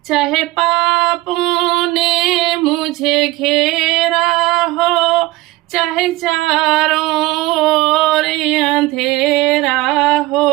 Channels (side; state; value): left; quieter; 18.7 dB